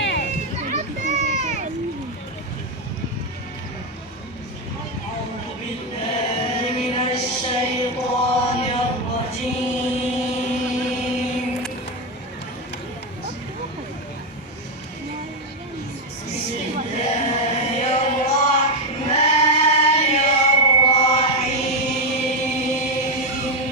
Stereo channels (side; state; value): both; normal; correlation 0.06